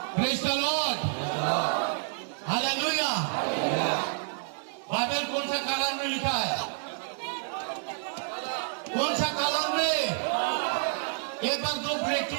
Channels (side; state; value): left; silent; digital silence